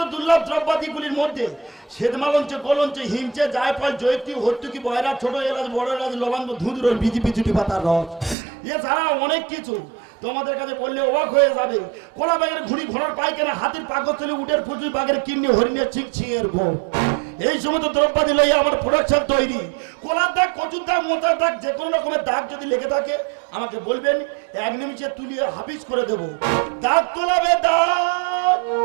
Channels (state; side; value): drops out; left; at 8.3 s